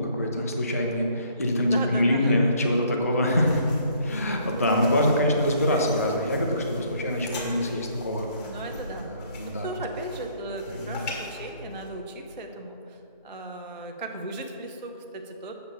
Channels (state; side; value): inverted; both; correlation -0.62